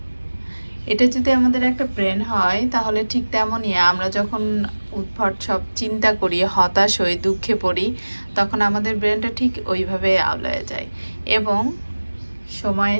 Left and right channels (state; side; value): inverted; both; correlation -1.00